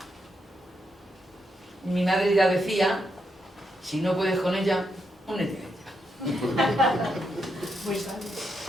Mi madre ya decía, si no puedes con ella, únete a ella. Muy bien.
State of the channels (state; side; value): normal; both; correlation 0.81